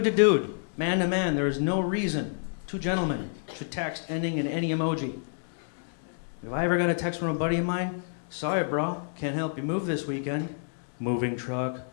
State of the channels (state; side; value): silent; right; digital silence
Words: to dude, man to man, there is no reason two gentlemen should text ending in any emoji. If I ever got a text from a buddy of mine, sorry bro, can't help you move this weekend. Moving truck,